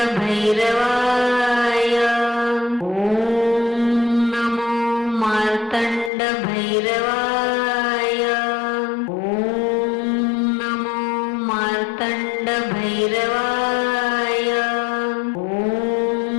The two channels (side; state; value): right; drops out; at 6.1 s